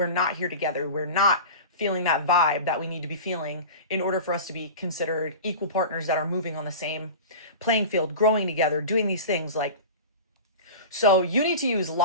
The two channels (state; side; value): inverted; both; correlation -0.32